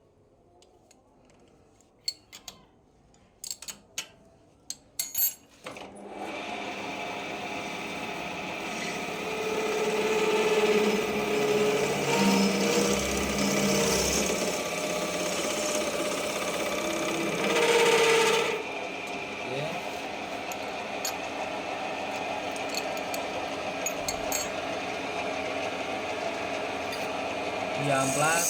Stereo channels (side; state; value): both; identical; correlation 1.00